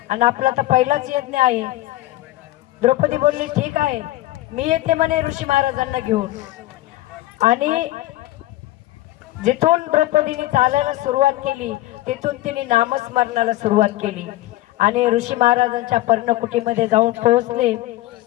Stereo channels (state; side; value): quieter; right; 16.5 dB